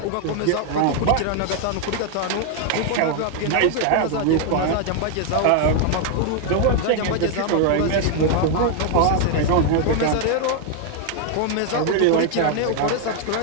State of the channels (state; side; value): different; both; correlation 0.00